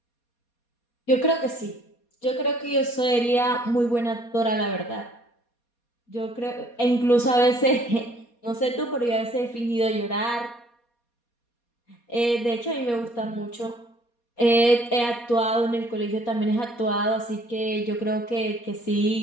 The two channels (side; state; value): right; late; 4.2 ms